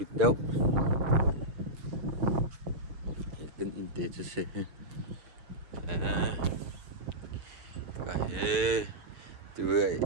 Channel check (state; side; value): late; left; 6.8 ms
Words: deu kan in te che se ka he tu